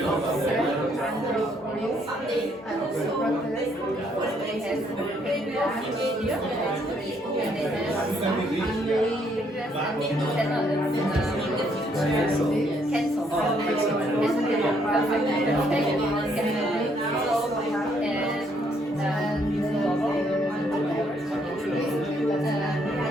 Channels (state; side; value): normal; both; correlation 0.70